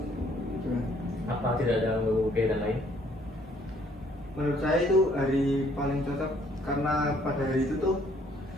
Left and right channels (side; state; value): both; normal; correlation 0.63